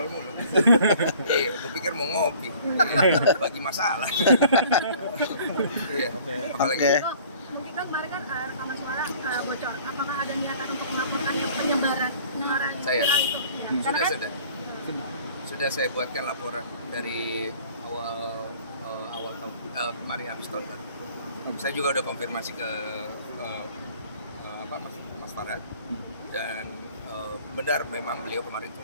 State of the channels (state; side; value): inverted; both; correlation -0.51